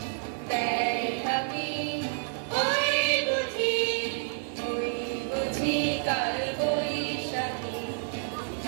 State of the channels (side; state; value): left; silent; 58 dB below the other